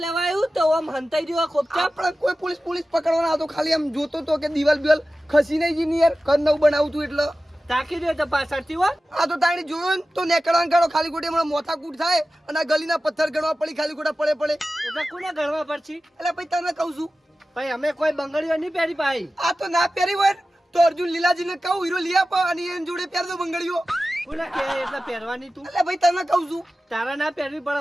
આવ્યું તો આમ હંતાઈ રહ્યો ખોપચા આપણે કોઈ પોલીસ પકડવાના આવતો ખાલી આમ જોતો તો કે દિવાલ બિવાલ ખસી નહીં જી યાર ઘર નવું બનાવું તું એટલે તાકી દે તો પાછળથી હો આ તો તાણી જોયો ને તો નેકળવાનું કાઢો ખાલી ખોટી હમણાં મોથા કૂટ થાય અને આ ગલીના પથ્થર ગણવા પડી ખાલી ખોટા પડે એટલે કોને ગણવા પડશે એટલે ભાઈ તને કહું છું ભાઈ અમે કોઈ બંગડીઓ નહીં પહેરી ભાઈ આ તો ના પહેરી હોય ને તો અર્જુન લીલાજીને કહું હીરો લઈ આપો અને એની જોડે પહેર દો બંગડીઓ કોને કે એટલે પહેરવાની તું એટલે ભાઈ તને કહું છું તારા ના પહેરવી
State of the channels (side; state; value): both; normal; correlation 0.95